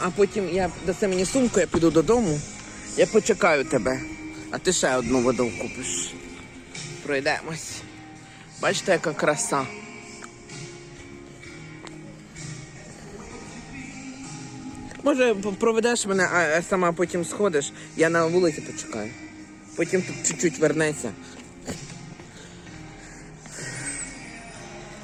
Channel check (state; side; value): identical; both; correlation 1.00